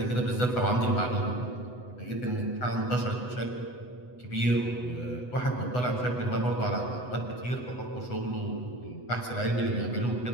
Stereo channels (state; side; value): late; right; 8.0 ms